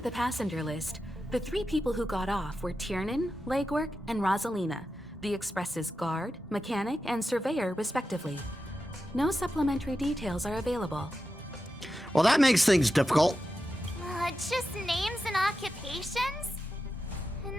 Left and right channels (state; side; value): normal; both; correlation 0.90